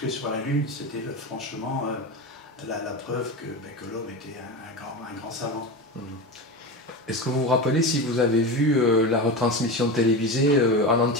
sur la Lune, c'était franchement la preuve que l'homme était un grand savant. Est-ce que vous vous rappelez si vous avez vu la retransmission télévisée en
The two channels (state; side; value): normal; both; correlation 0.23